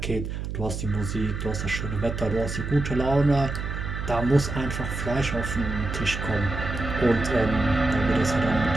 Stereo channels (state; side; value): noise; right; hum, 5 dB below the sound